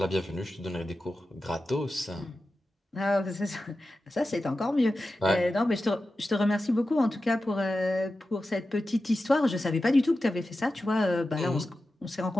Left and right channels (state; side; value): normal; both; correlation 0.93